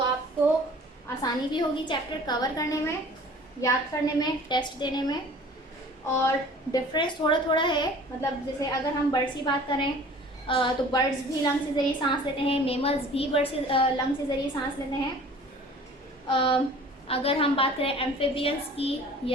आपको आसानी भी होगी चैप्टर कवर करने में, याद करने में, टेस्ट देने में। और डिफरेंस थोड़ा थोड़ा है, मतलब जैसे अगर हम बर्ड्स की बात करें तो बर्ड्स भी लंग्स के ज़रिए सांस लेते हैं, मेमल्स भी बर्ड्स लंग्स के ज़रिए सांस लेते हैं। अगर हम बात करें एम्फीबियंस की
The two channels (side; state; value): both; normal; correlation 0.47